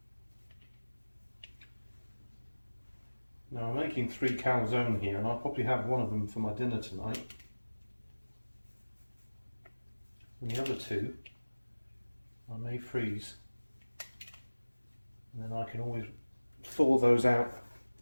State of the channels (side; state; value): both; inverted; correlation -1.00